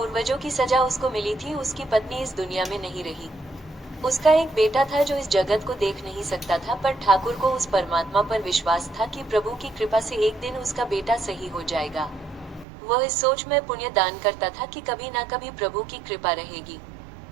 की सजा उसको मिली थी। उसकी पत्नी इस दुनिया में नहीं रही। उसका एक बेटा था जो इस जगत को देख नहीं सकता था, पर ठाकुर को उस परमात्मा पर विश्वास था कि प्रभु की कृपा से एक दिन उसका बेटा सही हो जाएगा। वह इस सोच में पुण्य दान करता था कि कभी ना कभी प्रभु की कृपा रहेगी।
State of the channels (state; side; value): drops out; left; at 12.7 s